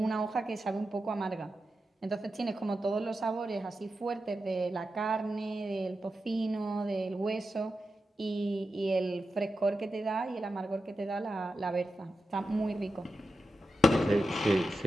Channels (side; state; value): both; normal; correlation 0.90